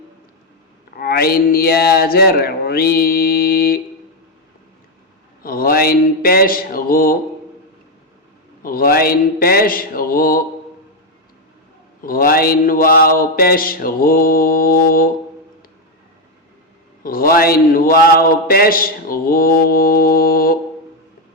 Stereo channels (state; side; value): normal; both; correlation 0.04